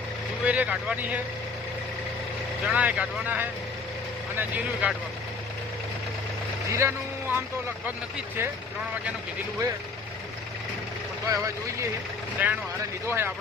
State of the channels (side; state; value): right; quieter; 4.4 dB